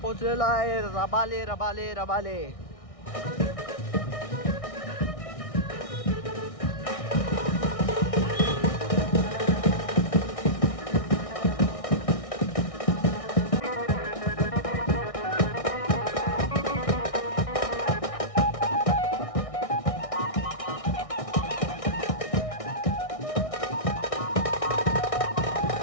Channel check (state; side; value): late; right; 1.6 ms